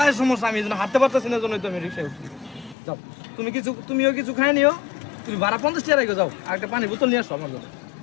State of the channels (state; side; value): drops out; right; at 2.8 s